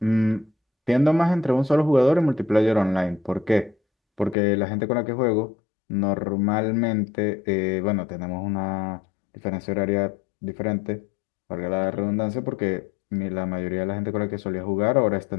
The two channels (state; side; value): drops out; right; at 4.4 s